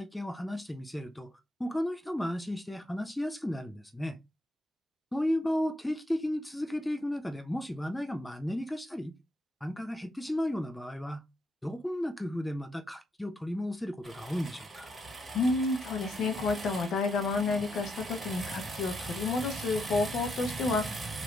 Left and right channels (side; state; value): both; normal; correlation 0.79